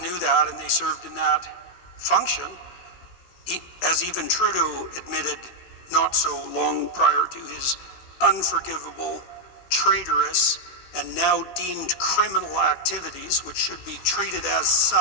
that, and they served in that function, as even Trudeau admitted not so long prior to his unforgivable, traitorous, and now deemed criminal activities, which should be treated as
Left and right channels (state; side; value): late; right; 16 ms